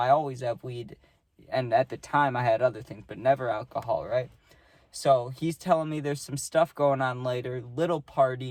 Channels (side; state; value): both; identical; correlation 1.00